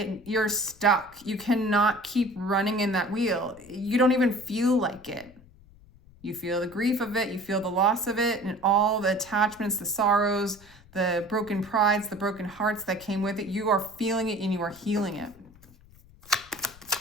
You're stuck. You cannot keep running in that wheel. You don't even feel like it. You feel the grief of it. You feel the loss of it and all the attachments, the sorrows, the broken prides, the broken hearts that came with it. You are feeling it and you are healing it.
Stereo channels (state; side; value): noise; left; rumble, 24 dB below the sound